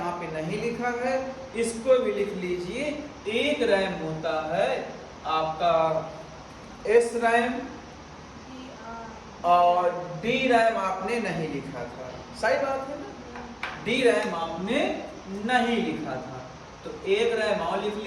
पे नहीं लिखा है, इसको भी लिख लीजिए। एक रैम होता है आपका एस रैम और डी रैम आपने नहीं लिखा था। सही बात है ना? डी रैम आपने नहीं लिखा था, तो एक रैम और लिख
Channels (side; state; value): both; identical; correlation 1.00